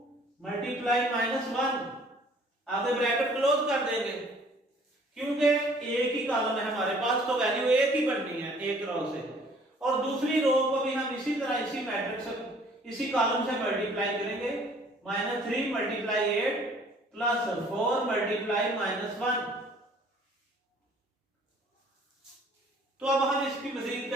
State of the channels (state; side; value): normal; both; correlation 0.56